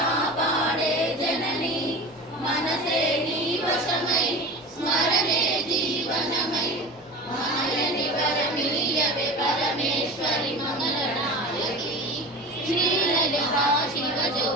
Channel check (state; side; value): normal; both; correlation 0.33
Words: జనని మనసే నీ వశమై స్మరణే జీవనమై మాయని వరమీయవే పరమేశ్వరి మంగళనాయకి శ్రీలలితా